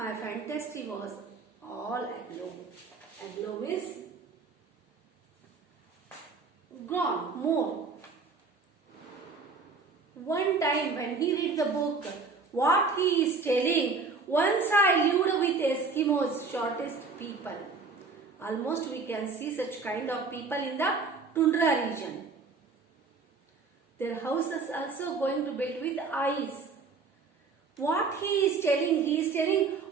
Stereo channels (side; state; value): left; quieter; 4.4 dB